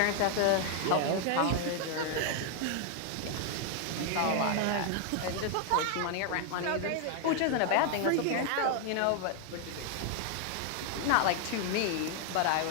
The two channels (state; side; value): different; both; correlation 0.00